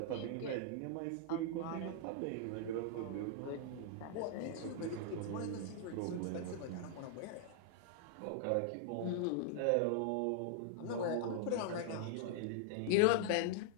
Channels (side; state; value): both; different; correlation 0.00